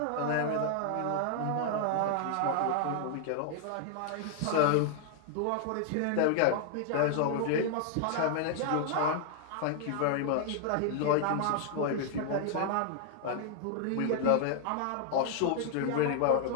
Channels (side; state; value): both; different; correlation 0.00